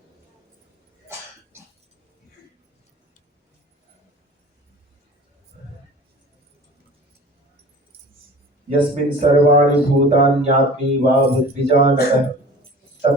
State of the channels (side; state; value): both; normal; correlation 0.41